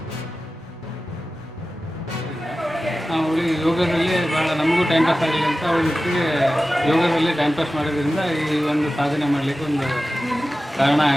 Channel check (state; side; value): normal; both; correlation 0.95